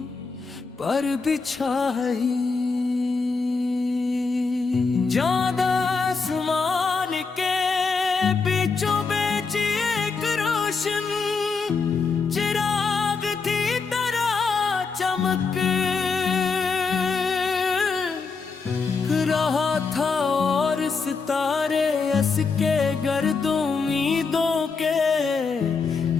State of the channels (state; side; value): quieter; right; 4.7 dB